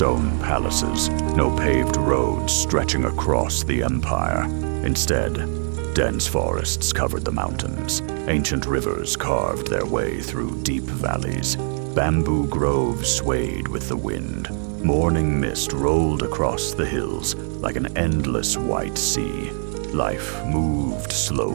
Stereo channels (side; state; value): left; silent; 57 dB below the other